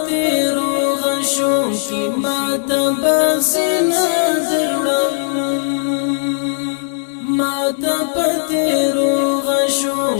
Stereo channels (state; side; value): silent; right; digital silence